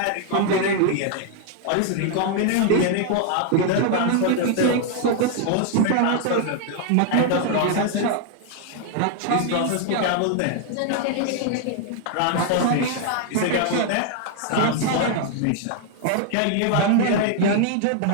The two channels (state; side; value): different; both; correlation 0.00